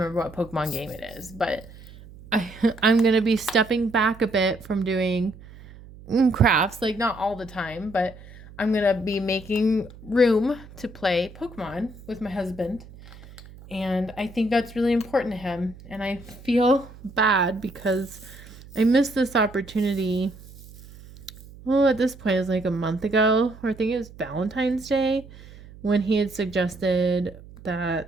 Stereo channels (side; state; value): right; noise; hum, 19 dB below the sound